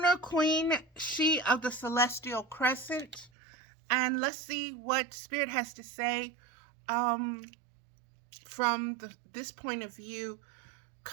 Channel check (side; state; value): left; drops out; at 3.3 s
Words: Queen, she of the Celestial Crescent. And let's see what Spirit has to say from this point of view